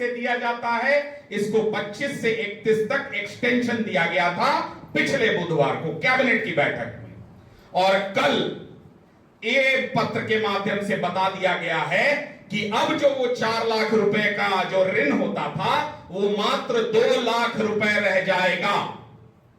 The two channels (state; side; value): identical; both; correlation 1.00